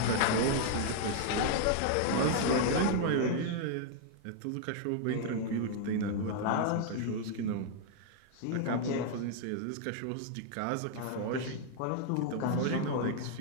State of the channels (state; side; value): different; both; correlation 0.00